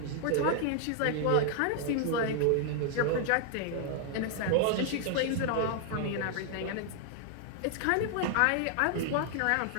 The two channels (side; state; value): both; different; correlation 0.00